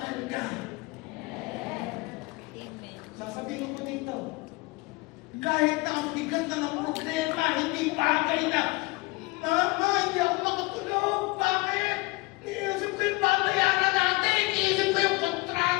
ka. Sasabihin ko dito, kahit na ang bigat na ng problema, hindi bagay na, Mama, hindi ako makatulog. Bakit? Iniisip ko yung babayaran natin. Iniisip ko yung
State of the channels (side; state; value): right; quieter; 24.2 dB